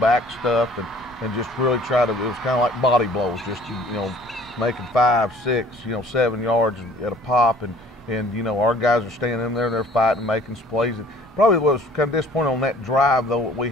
stuff, and just really it was kind of like body blows, just making 5, 6, 7 yards at a pop, and our guys are staying in there, they're fighting, making some plays. And probably was kind of disappointing on that drive, though. We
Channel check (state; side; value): normal; both; correlation 0.53